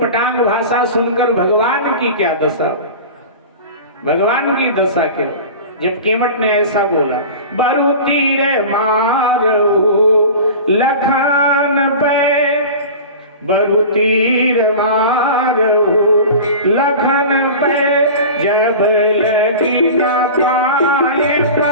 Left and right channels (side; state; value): both; inverted; correlation -0.34